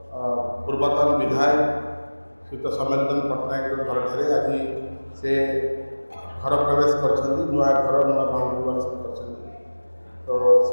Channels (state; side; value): inverted; both; correlation -1.00